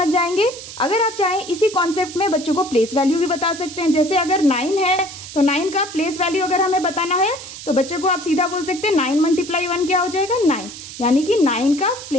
जाएंगे। अगर आप चाहें इसी कॉन्सेप्ट में बच्चों को प्लेस वैल्यू भी बता सकते हैं। जैसे अगर 9 है तो 9 का प्लेस वैल्यू अगर हमें बताना है तो बच्चे को आप सीधा बोल सकते हैं 9 × 1 क्या हो जाएगा 9, यानी कि 9 का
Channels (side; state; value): right; noise; hiss, 13 dB below the sound